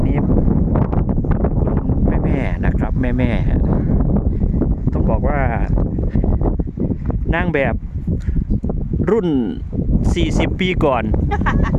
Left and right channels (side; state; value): both; identical; correlation 1.00